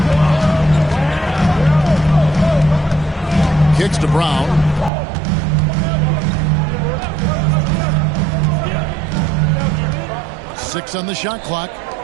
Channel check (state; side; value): drops out; left; at 4.9 s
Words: Kicks to Brown. Six on the shot clock.